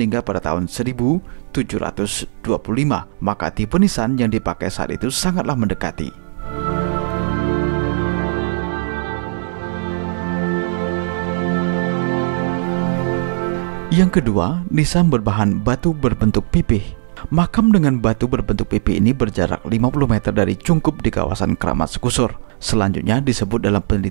pada tahun 1725, maka tipe nisan yang dipakai saat itu sangatlah mendekati. Yang kedua, nisan berbahan batu berbentuk pipih. Makam dengan batu berbentuk pipih ini berjarak 50 meter dari cungkup di kawasan Keramat Sekusur. Selanjutnya disebut dalam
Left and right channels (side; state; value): left; silent; digital silence